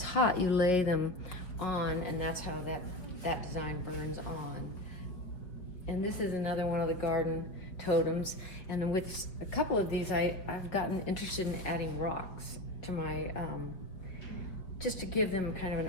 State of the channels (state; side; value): late; right; 4.8 ms